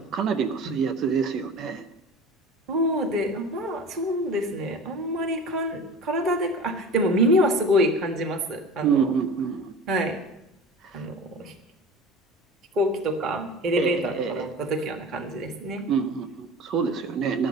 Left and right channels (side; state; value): both; normal; correlation 0.36